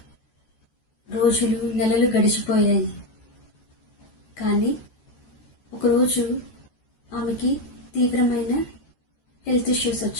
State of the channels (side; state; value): right; late; 14 ms